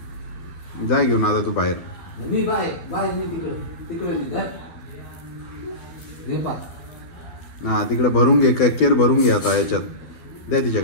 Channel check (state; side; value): late; right; 12 ms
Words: जाय घेऊन आता तू बाहेर. मी बाय बाय मी तिकडे तिकडे हा तिकडे भरून घे. केर भरून घे आता याच्यात. द्या